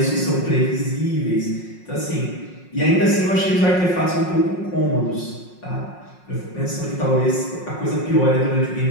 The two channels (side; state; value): right; late; 5.5 ms